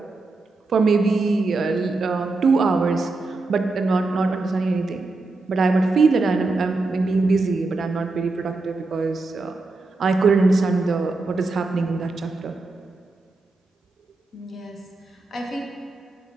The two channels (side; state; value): left; quieter; 3.4 dB